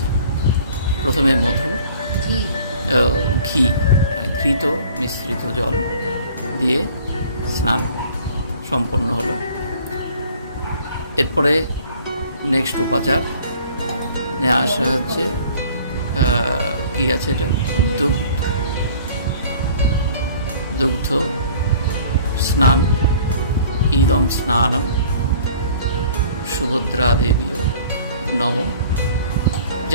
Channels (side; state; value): both; inverted; correlation -0.51